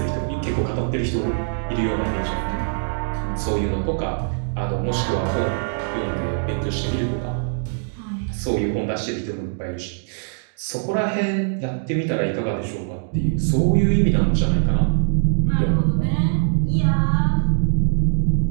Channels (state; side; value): silent; left; digital silence